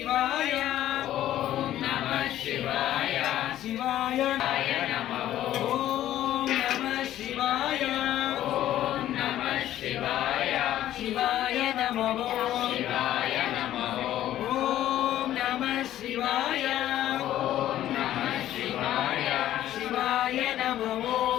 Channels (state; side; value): quieter; right; 12.8 dB